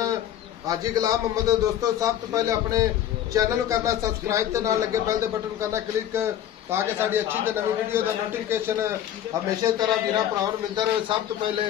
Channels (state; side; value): quieter; right; 11.1 dB